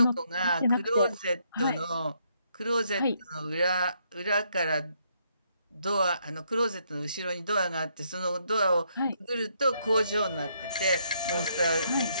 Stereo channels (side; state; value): both; inverted; correlation -0.73